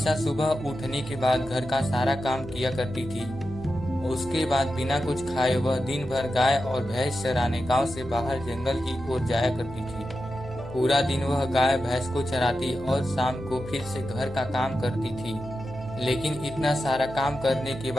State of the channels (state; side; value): noise; right; hum, 15 dB below the sound